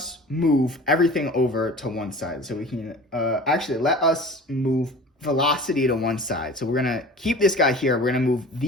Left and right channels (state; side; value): normal; both; correlation 0.41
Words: move everything over to one side. So we can, actually, let us move velocity to one side. So we're going to keep this guy here. We're going to move